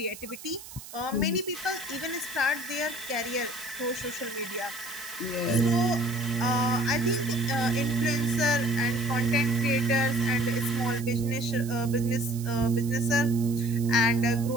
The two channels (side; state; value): right; noise; hiss, 15 dB below the sound